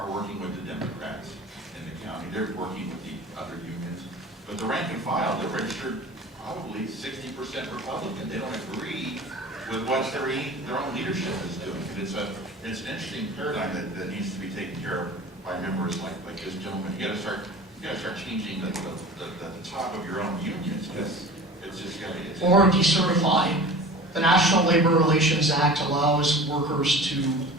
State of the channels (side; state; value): both; normal; correlation 0.39